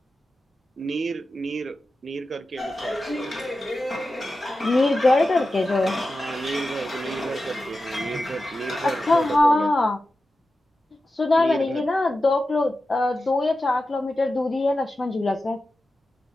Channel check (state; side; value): normal; both; correlation 0.92